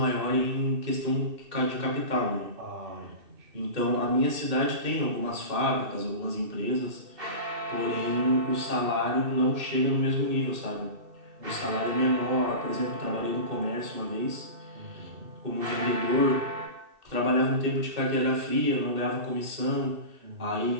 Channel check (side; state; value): left; late; 2.7 ms